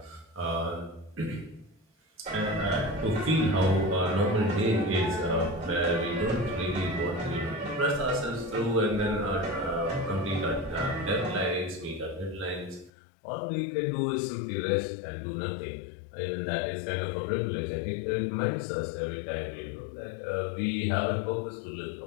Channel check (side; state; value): right; drops out; at 12.9 s